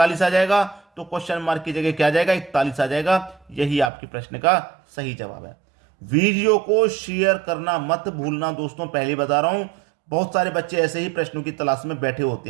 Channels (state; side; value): drops out; left; at 3.9 s